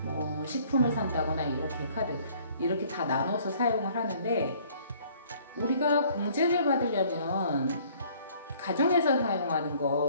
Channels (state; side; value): inverted; both; correlation -0.58